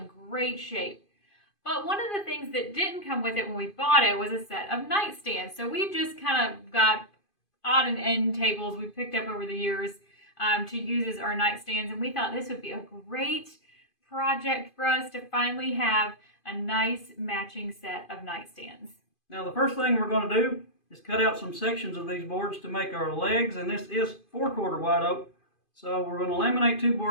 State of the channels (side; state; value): right; late; 2.5 ms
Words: great shape. But one of the things that didn't come with it when we bought it was a set of nightstands. So we've just kind of got odd and end tables we've picked up over the years to use as our nightstands. And we thought this would be a great project for us to finally have a nice matching set of nightstands. Now the first thing we're going to do is cut out some sections of these boards to make our legs, and this is 4/4 white oak. So we're going to laminate two